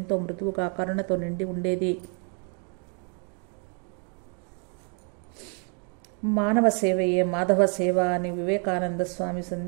మృదువుగా కరుణతో నిండి ఉండేది. మానవ సేవయే మాధవ సేవ అని వివేకానంద స్వామి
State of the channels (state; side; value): quieter; left; 39.7 dB